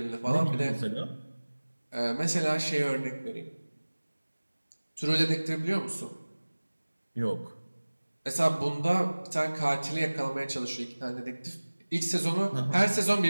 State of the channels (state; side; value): inverted; both; correlation -1.00